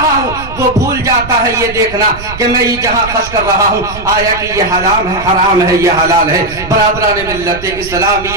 ہوں وہ بھول جاتا ہے یہ دیکھنا کہ میں یہ جہاں خرچ کر رہا ہوں آیا کہ یہ حرام ہے، حرام ہے، یہ حلال ہے. برادران ملت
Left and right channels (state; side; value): noise; right; rumble, 13 dB below the sound